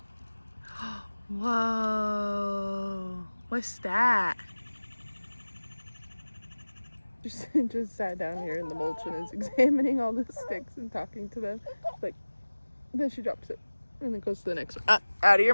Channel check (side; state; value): both; inverted; correlation -1.00